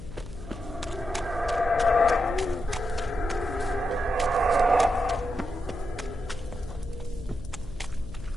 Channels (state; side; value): noise; left; hum, 12 dB below the sound